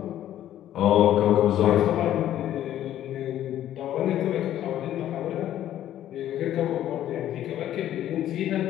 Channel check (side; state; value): right; quieter; 12.1 dB